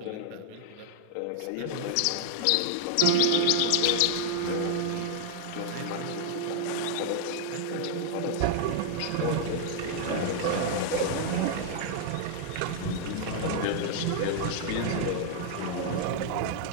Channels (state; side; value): different; both; correlation -0.01